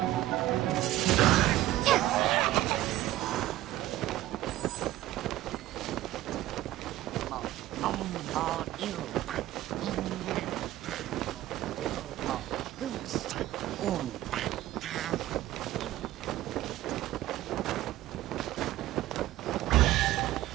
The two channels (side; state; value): left; quieter; 15.2 dB